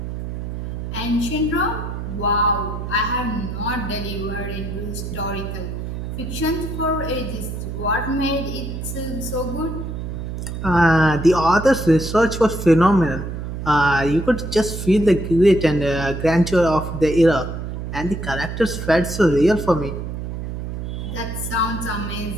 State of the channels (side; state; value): right; noise; hum, 6 dB below the sound